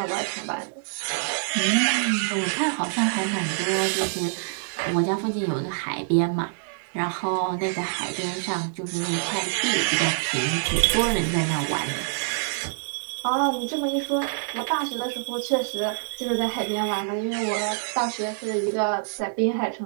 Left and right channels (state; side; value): silent; left; digital silence